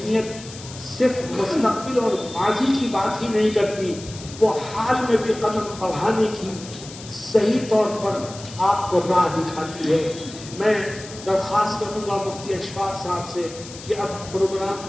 صرف مستقبل اور ماضی کی بات ہی نہیں کرتی، وہ حال میں بھی قدم بڑھانے کی صحیح طور پر آپ کو راہ دکھاتی ہے۔ میں درخواست کروں گا مفتی اشفاق صاحب سے کہ اب پروگرام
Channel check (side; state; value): left; noise; hiss, 15 dB below the sound